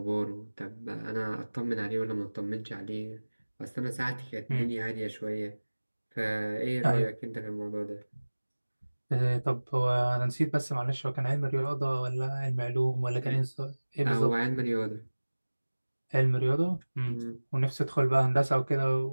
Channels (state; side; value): inverted; both; correlation -1.00